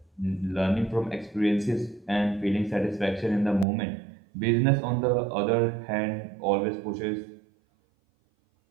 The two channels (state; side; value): drops out; left; at 3.7 s